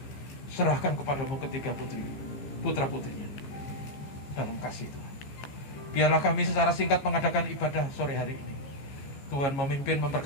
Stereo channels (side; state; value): right; late; 15 ms